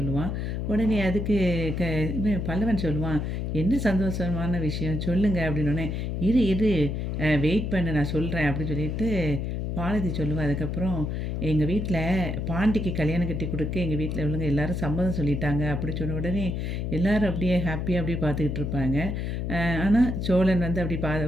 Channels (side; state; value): left; noise; hum, 2 dB below the sound